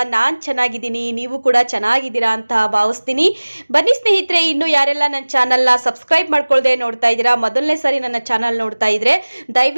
ನಾನು ಚೆನ್ನಾಗಿದ್ದೀನಿ, ನೀವು ಕೂಡ ಚೆನ್ನಾಗಿದ್ದೀರಾ ಅಂತ ಭಾವಿಸ್ತೀನಿ. ಬನ್ನಿ ಸ್ನೇಹಿತರೆ, ಇನ್ನು ಯಾರೆಲ್ಲ ನನ್ನ ಚಾನಲ್ನ ಸಬ್ಸ್ಕ್ರೈಬ್ ಮಾಡ್ಕೊಳ್ಳದೆ ನೋಡ್ತಾ ಇದ್ದೀರಾ, ಮೊದಲನೇ ಸಾರಿ ನನ್ನ ಚಾನಲ್ ನೋಡ್ತಾ ಇದ್ರೆ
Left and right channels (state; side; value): inverted; both; correlation -1.00